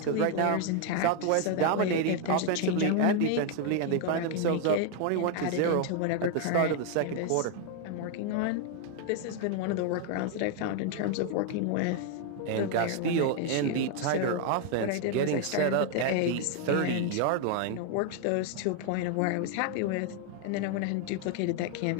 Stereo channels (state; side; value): different; both; correlation 0.00